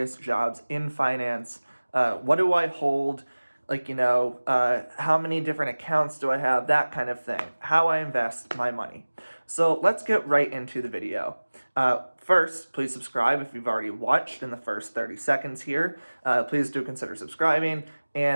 jobs in finance, what do I hold? How many different accounts do I have? That kind of thing. How I invest my money. So let's get right into the video. First, please subscribe if you've already watched in the first 30 seconds here. Please do consider subscribing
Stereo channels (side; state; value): both; inverted; correlation -1.00